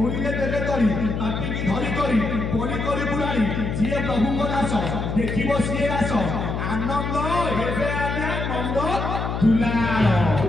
देवे तरी पापी की धरी करी बलि करी बुढ़ाड़ी जी प्रभु को दास देखिब सी दास आनंद हेबे आज्ञा नंद दुलार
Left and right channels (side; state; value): left; noise; hum, 3 dB below the sound